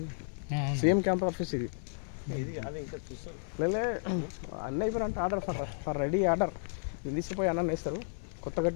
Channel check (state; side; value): silent; right; 56 dB below the other